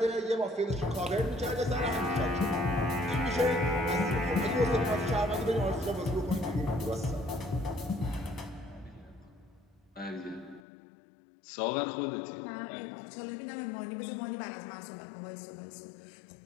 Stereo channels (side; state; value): right; drops out; at 10.7 s